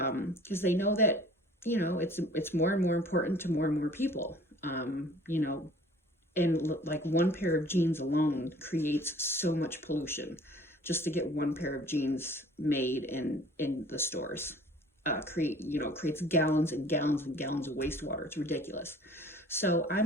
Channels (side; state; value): both; normal; correlation 0.50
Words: they know that it's more and more important to more and more people. And like one pair of jeans alone creates so much pollution just to get one pair of jeans made in the stores. Creates gallons and gallons and gallons of wastewater. It's ridiculous. So